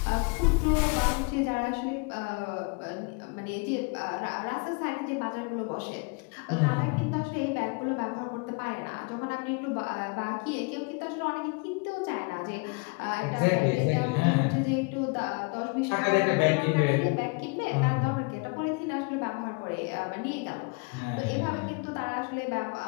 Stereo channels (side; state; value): right; quieter; 32.2 dB